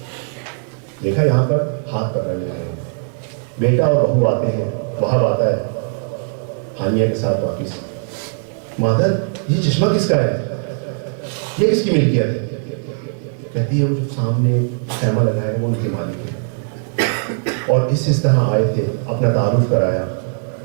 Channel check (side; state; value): left; silent; 66 dB below the other